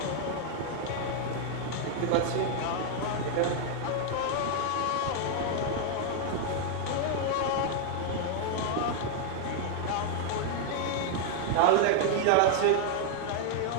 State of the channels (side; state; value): both; different; correlation 0.00